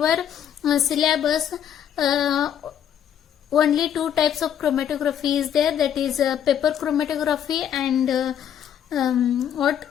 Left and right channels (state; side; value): quieter; right; 9.5 dB